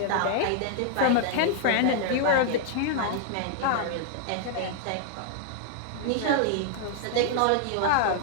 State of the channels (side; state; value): both; different; correlation 0.00